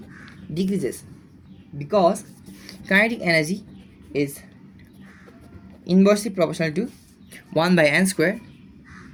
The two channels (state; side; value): identical; both; correlation 1.00